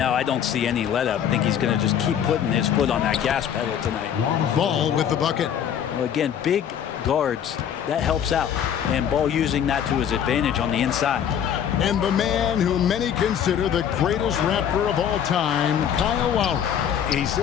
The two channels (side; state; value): right; quieter; 9.0 dB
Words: I don't see any let up. I think he's going to just keep putting his foot on that gas pedal tonight. Ball with the bucket. Well, again, big guards, that helps out. And Ball using that to his advantage on the inside. And the man who many consider the greatest Raptor of all time, Kyle Lowry. He